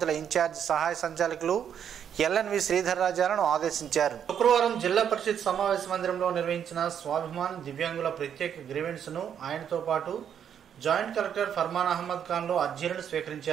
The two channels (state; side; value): quieter; left; 8.7 dB